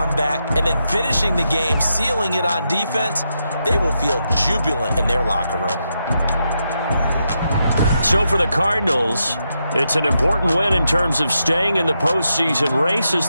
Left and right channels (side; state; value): both; inverted; correlation -0.84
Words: and then finishing the game, sealing it on defense, they will feel jubilant in their locker room. So for the Cardinals, It's an important win in terms of staying in the postseason race as